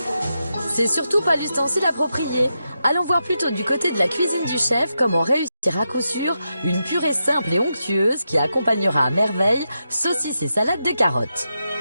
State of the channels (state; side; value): inverted; both; correlation -0.87